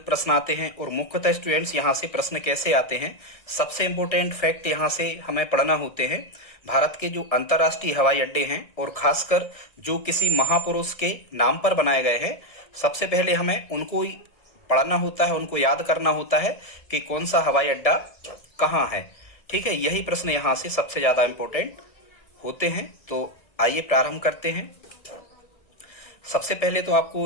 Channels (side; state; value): right; late; 1.8 ms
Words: प्रश्न आते हैं। और मुख्यतः स्टूडेंट्स यहां से प्रश्न कैसे आते हैं, सबसे इंपॉर्टेंट फैक्ट यहां से हमें पढ़ना होते हैं। भारत के जो अंतर्राष्ट्रीय हवाई अड्डे हैं और खासकर जो किसी महापुरुष के नाम पर बनाए गए हैं, सबसे पहले हमें उनको ही पढ़ना होता है, उनको याद करना होता है कि कौन सा हवाई अड्डा कहाँ है। ठीक है, यही प्रश्न यहां से सबसे ज्यादा इंपॉर्टेंट होते हैं। तो आइए प्रारंभ करते हैं। सबसे पहले तो